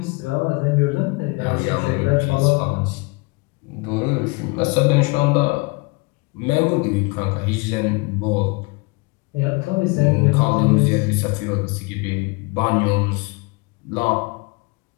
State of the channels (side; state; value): right; quieter; 27.2 dB